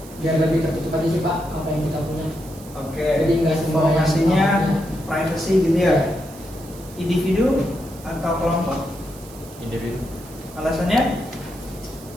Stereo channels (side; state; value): right; noise; hiss, 20 dB below the sound